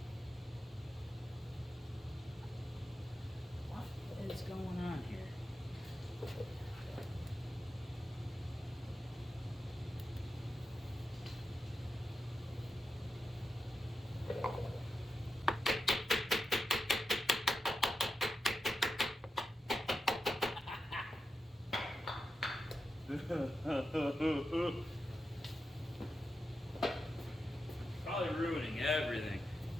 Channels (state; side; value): normal; both; correlation 0.89